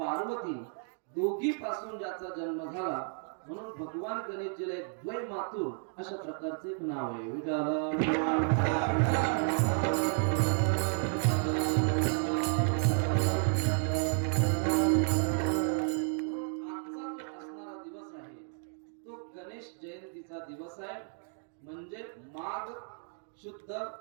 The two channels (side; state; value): left; silent; 56 dB below the other